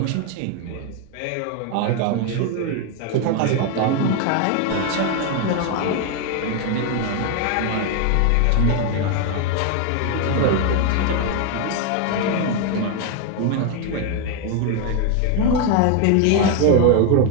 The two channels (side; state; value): both; different; correlation 0.01